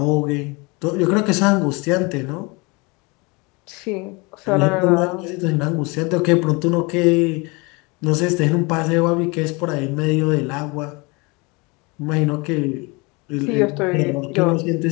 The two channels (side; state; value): right; quieter; 27.6 dB